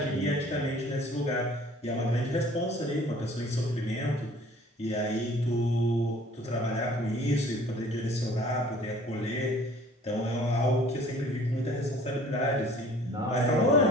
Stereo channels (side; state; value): both; normal; correlation 0.52